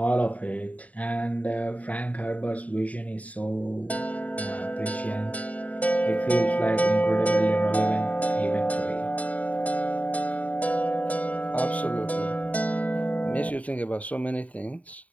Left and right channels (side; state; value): right; late; 0.069 ms